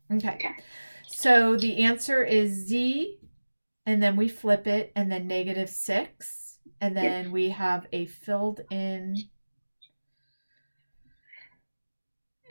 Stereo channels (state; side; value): inverted; both; correlation -1.00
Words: Okay. So the answer is z, and then we flip it, and then -6, and then we have a filled in,